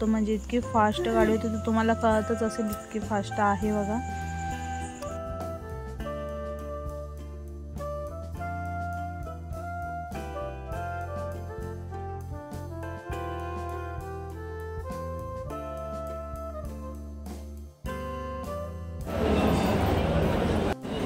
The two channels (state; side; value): identical; both; correlation 1.00